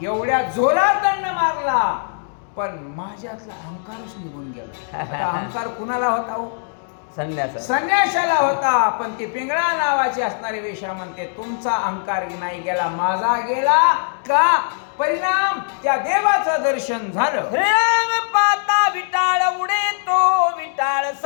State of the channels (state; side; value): silent; right; digital silence